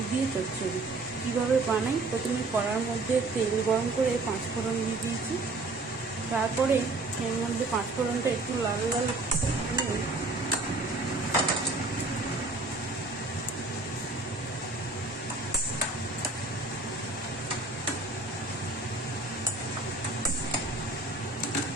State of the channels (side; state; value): left; quieter; 3.2 dB